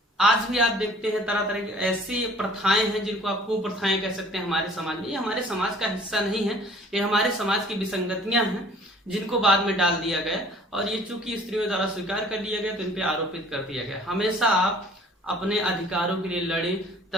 आज भी आप देखते हैं तरह तरह की ऐसी प्रथाएं हैं जिनको आप कुप्रथाएं कह सकते हैं हमारे समाज में। ये हमारे समाज का हिस्सा नहीं है, ये हमारे समाज की विसंगतियां हैं जिनको बाद में डाल दिया गया और ये चूंकि स्त्रियों द्वारा स्वीकार कर लिया गया तो इन पे आरोपित कर दिया गया। हमेशा आप अपने अधिकारों के लिए लड़े,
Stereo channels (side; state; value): both; normal; correlation 0.52